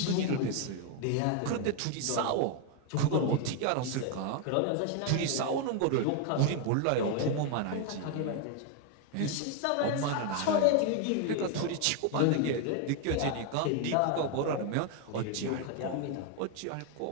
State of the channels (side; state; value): both; different; correlation 0.01